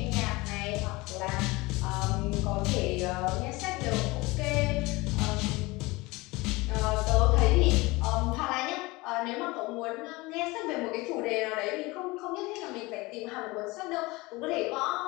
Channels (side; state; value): right; quieter; 22.7 dB